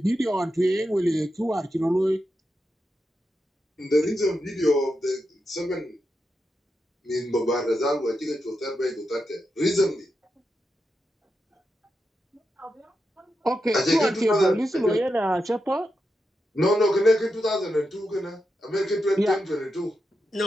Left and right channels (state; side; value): normal; both; correlation 0.87